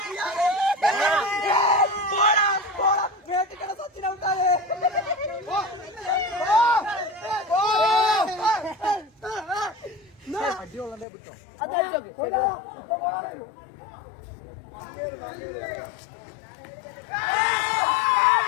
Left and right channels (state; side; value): drops out; right; at 11.1 s